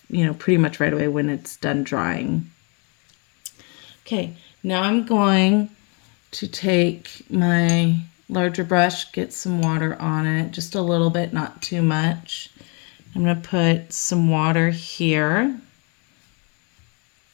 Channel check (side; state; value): right; quieter; 34.0 dB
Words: you know, pretty much right away when it's done drying. Okay, now I'm going to take my larger brush, get some water on it, just a little bit, not too much. I'm going to put some water here.